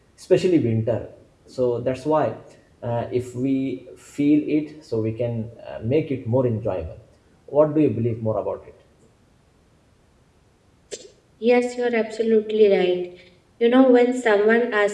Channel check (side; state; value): both; identical; correlation 1.00